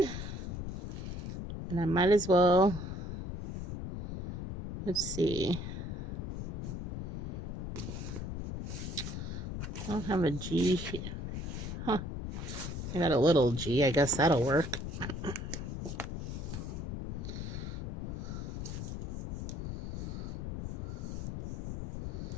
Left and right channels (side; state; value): left; noise; rumble, 5 dB below the sound